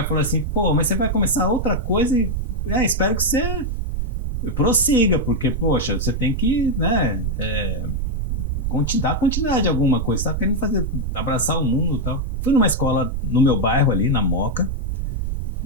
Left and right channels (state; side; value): noise; right; rumble, 2 dB below the sound